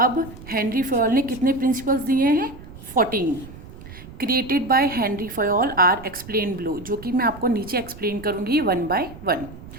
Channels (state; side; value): noise; right; rumble, 16 dB below the sound